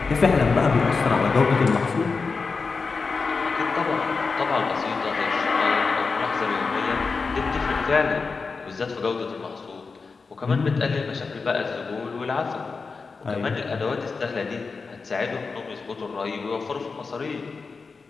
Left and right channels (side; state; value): right; quieter; 4.6 dB